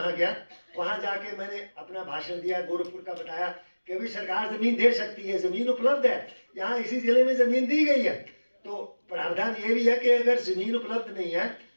गया। वहां जाके मैंने अपना भाषण दिया, गोरखपुर का बताया कि अभी सरकार जमीन दे सकती है, जमीन उपलब्ध है, यहाँ इसी जिले में जमीन दी गई है। तो प्रावधान ये भी है कि अगर जमीन उपलब्ध नहीं है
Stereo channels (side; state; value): both; inverted; correlation -1.00